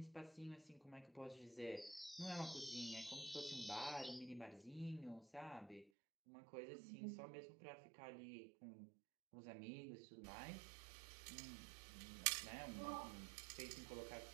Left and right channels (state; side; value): drops out; left; at 5.9 s